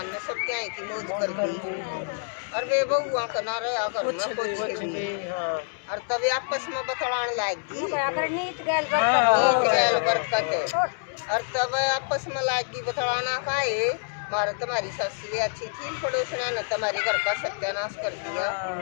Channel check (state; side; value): silent; right; 60 dB below the other